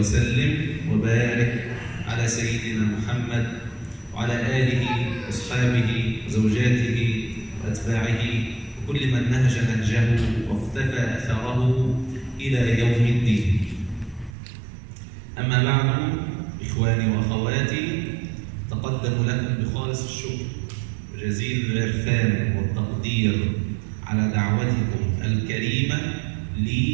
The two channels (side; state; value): left; drops out; at 14.3 s